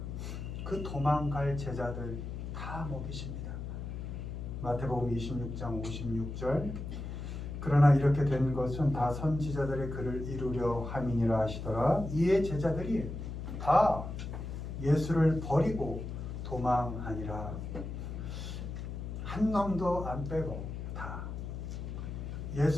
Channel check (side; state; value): left; noise; hum, 6 dB below the sound